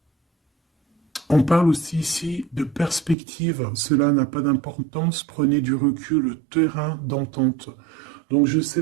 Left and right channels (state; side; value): drops out; left; at 3.2 s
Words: on parle aussi ici de perspective. Cela n'a pas d'importance. Prenez du recul, terrain d'entente. Donc je